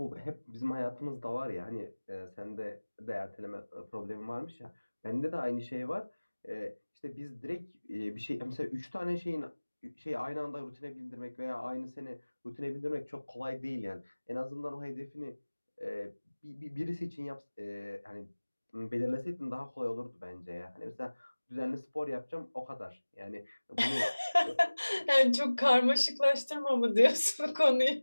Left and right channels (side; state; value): both; inverted; correlation -1.00